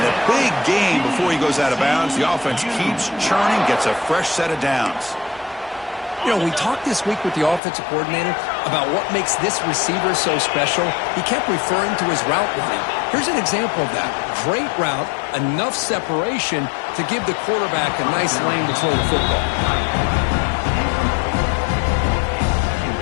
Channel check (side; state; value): right; drops out; at 7.6 s